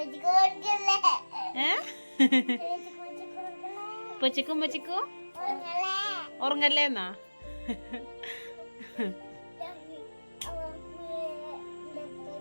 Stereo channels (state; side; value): inverted; both; correlation -1.00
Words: ഉപ്പച്ചിക്കും ഉമ്മച്ചിക്കും ഉറങ്ങല്ലേ എന്നാ